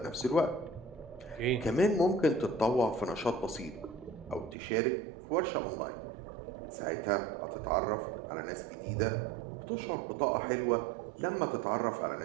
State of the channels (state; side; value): drops out; left; at 4.5 s